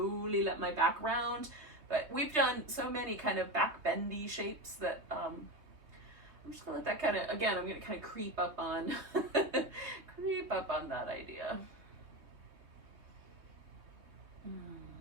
let my back round, but we've done so many kind of back bendy shapes that I'm just gonna let that kind of, again, I'm gonna kind of creep up on that idea.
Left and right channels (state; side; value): late; left; 3.2 ms